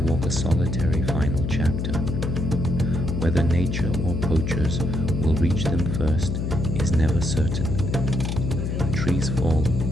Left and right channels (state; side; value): noise; left; hum, 1 dB below the sound